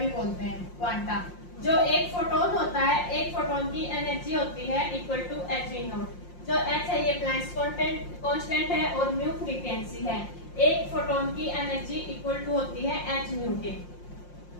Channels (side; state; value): right; late; 5.6 ms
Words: बोलते हैं, क्वांटा। जो एक फोटोन होता है, एक फोटोन की एनर्जी होती है इक्वल टू h(V0). जो h है ये प्लैंक्स कांस्टेंट है और म्यू फ्रीक्वेंसी है। एक फोटोन की एनर्जी इक्वल टू होती है h म्यू के।